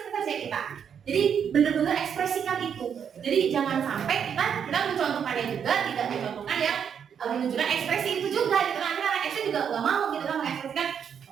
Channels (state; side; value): quieter; left; 7.8 dB